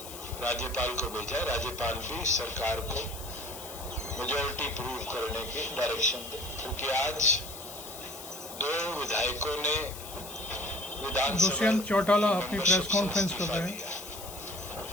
राज्यपाल को भेजा। राज्यपाल भी सरकार को मेजॉरिटी प्रूव करने की डायरेक्शन दे, क्योंकि आज 2 विधायकों ने विधानसभा दुष्यंत चौटाला अपनी प्रेस कॉन्फ्रेंस कर रहे हैं।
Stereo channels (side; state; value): left; noise; hiss, 12 dB below the sound